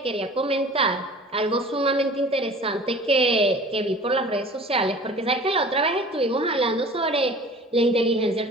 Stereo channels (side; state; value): both; normal; correlation 0.44